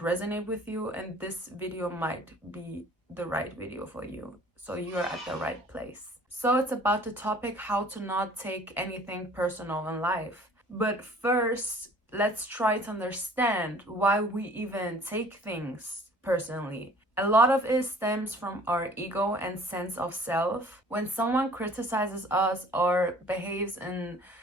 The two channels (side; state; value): both; normal; correlation 0.52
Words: resonate with you, and this video might be the right video for you. So you are at the right place. So it's about the topic how to not take anything personal in life. But first, let's try to understand why we even take things personally. A lot of it stems from our ego and sense of self. When someone criticizes us or behaves in